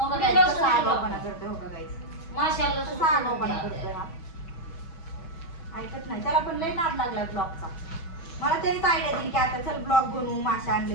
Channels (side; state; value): right; late; 6.1 ms